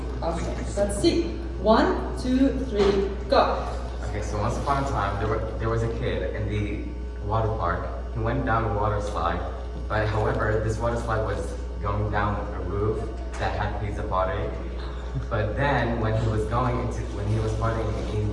Okay, let's see. 1, 2, 3, go. Okay, so once upon a time, there was a kid in the water park. He went down a water slide, but however, this water slide was going down a roof that had pizza party. But then, when he was partying and eating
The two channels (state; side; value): identical; both; correlation 1.00